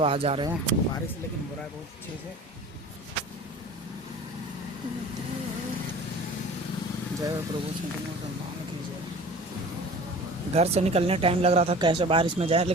आ जा रहे हैं। बारिश लेकिन हो रहा है बहुत अच्छे से। जय प्रभु सम्मान कीजिए। घर से निकलने टाइम लग रहा था कैसे बारिश में जाए,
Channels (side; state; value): both; normal; correlation 0.41